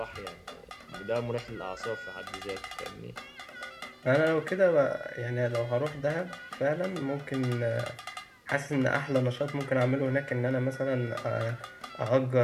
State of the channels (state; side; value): identical; both; correlation 1.00